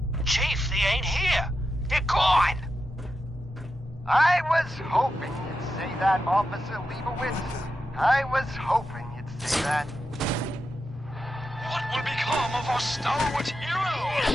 Chief, they ain't here. They're gone. I was hoping you'd say that, Officer Leibowitz. I was hoping you'd say that. What will become of our stalwart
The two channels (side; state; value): both; normal; correlation 0.88